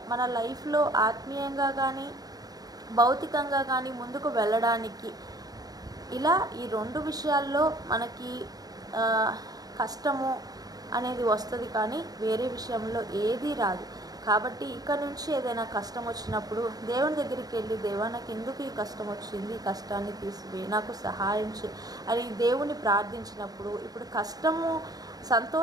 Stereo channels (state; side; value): late; left; 0.18 ms